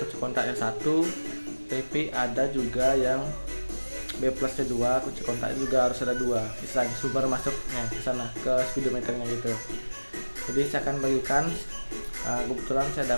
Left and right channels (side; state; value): both; inverted; correlation -1.00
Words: kontaknya satu, tapi ada juga yang B plusnya dua, kunci kontaknya juga harus ada dua, istilahnya sumber masuknya ke sana ke speedometernya gitu. Jadi saya akan bagikan, kebetulan